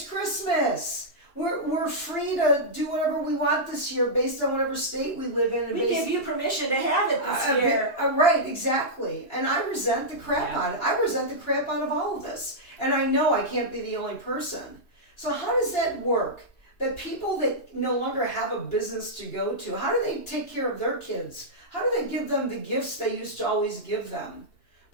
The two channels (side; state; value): right; late; 2.7 ms